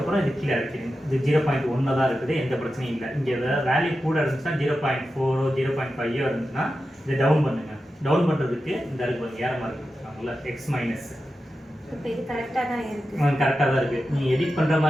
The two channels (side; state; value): both; normal; correlation 0.91